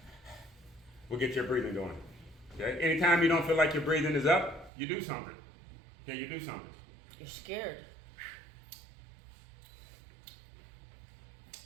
will get your breathing going. Okay? Anytime you don't feel like your breathing is up, you do something. Okay, you do something. You're scared.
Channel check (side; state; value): left; drops out; at 4.7 s